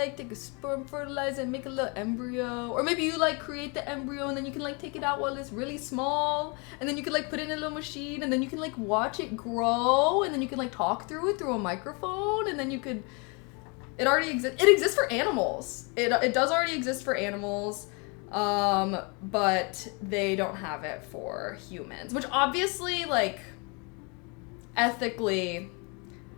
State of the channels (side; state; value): right; quieter; 31.9 dB